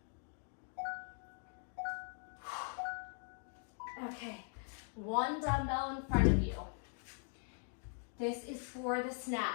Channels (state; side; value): silent; right; 50 dB below the other